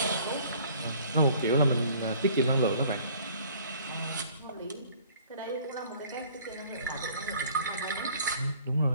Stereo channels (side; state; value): both; inverted; correlation -0.53